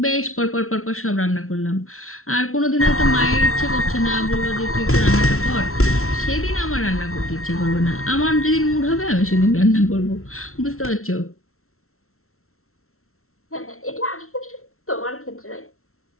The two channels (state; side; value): late; right; 0.63 ms